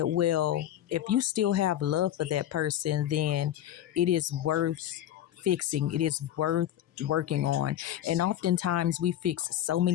well, if you still have love for that person, then it is worth fixing. It is worth working on. And oftentimes we fix so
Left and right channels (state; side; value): quieter; right; 11.8 dB